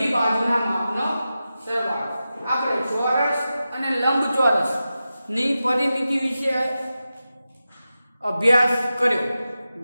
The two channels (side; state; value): both; inverted; correlation -0.92